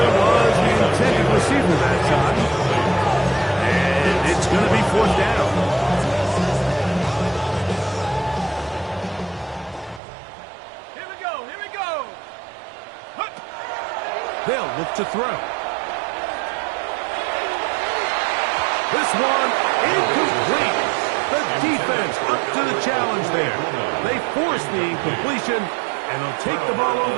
was the intended receiver that time. And it's going to be fourth down. Here we go. Here we go. They'll look to throw. This one incomplete. The defense up to the challenge there. They force the incompletion, and they'll take the ball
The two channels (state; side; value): drops out; left; at 10.0 s